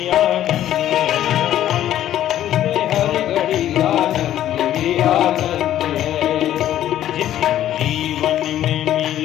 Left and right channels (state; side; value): quieter; right; 12.1 dB